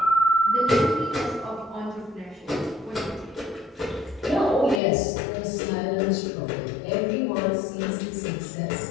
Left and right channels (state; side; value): drops out; right; at 4.8 s